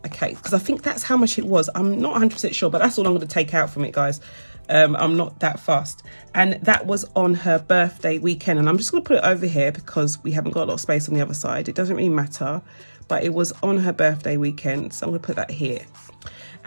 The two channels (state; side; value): inverted; both; correlation -1.00